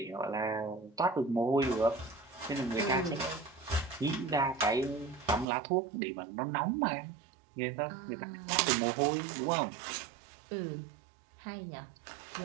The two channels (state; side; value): drops out; left; at 5.5 s